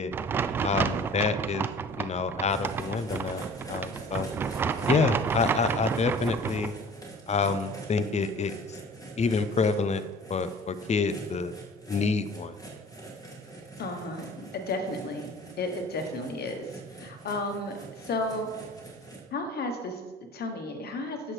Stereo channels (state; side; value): normal; both; correlation 0.46